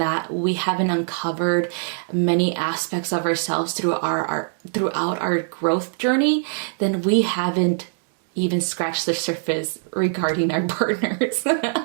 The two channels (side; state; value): left; silent; digital silence